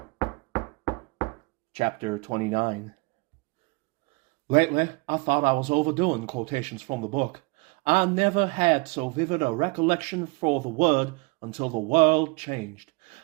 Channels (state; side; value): quieter; left; 27.4 dB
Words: Chapter 29. Lately, I thought I was overdoing quotations from the book. I never had so vivid a recollection for the word until the world changed.